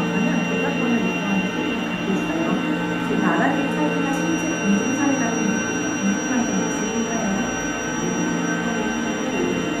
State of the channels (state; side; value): identical; both; correlation 1.00